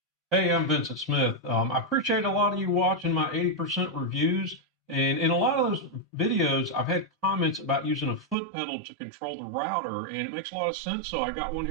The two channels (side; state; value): left; drops out; at 8.3 s